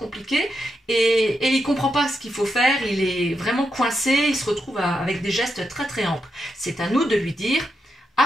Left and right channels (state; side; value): normal; both; correlation 0.84